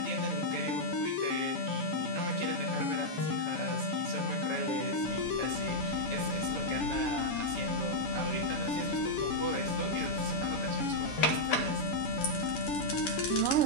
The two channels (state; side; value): late; right; 7.1 ms